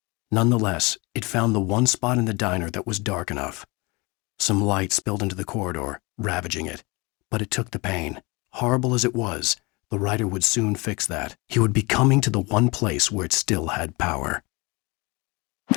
Nonetheless, it found the one spot in the diner that was dark enough. Some light spilled into the corridor, ravaging it. But it took the pain. Horrible as it was, the writer would soon fix that. He would be coming to the one place where it still had power.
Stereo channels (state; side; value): quieter; right; 26.4 dB